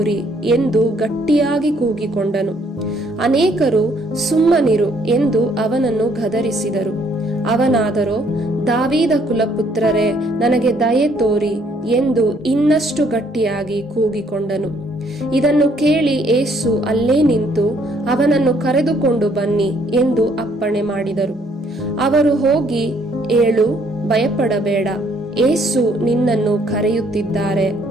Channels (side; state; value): both; normal; correlation 0.66